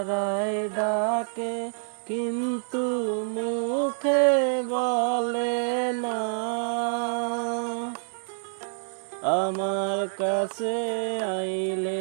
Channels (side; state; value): left; silent; 60 dB below the other